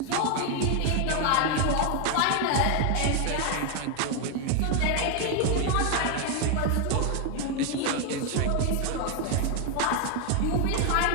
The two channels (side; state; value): both; different; correlation 0.01